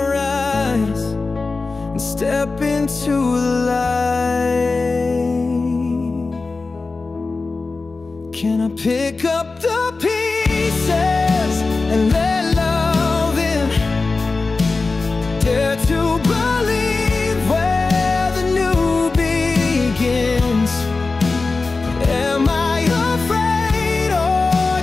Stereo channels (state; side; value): quieter; right; 3.8 dB